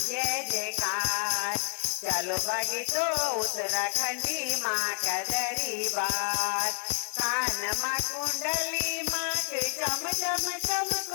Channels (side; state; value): right; silent; 56 dB below the other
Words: जयकार। चलो भागे तो उत्तराखंडी माँ का दरबार। कान माँ कुंडली माँ के चम चम चम